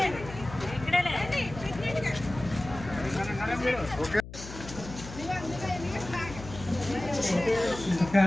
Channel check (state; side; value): noise; left; hum, 13 dB below the sound